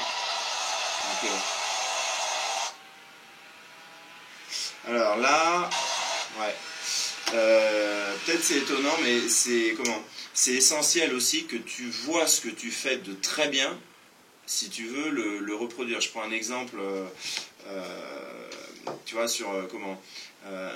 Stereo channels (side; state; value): both; identical; correlation 1.00